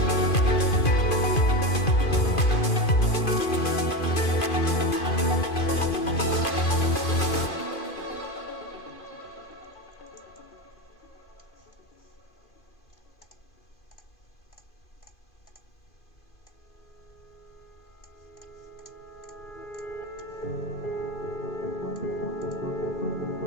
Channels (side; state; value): right; late; 2.5 ms